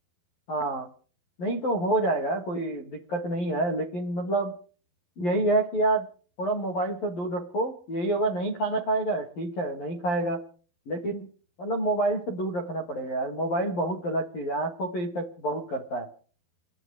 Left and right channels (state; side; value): late; right; 11 ms